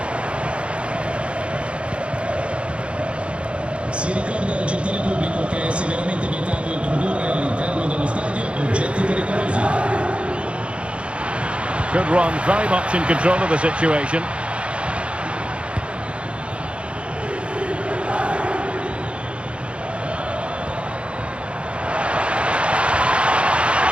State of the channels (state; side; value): late; left; 0.059 ms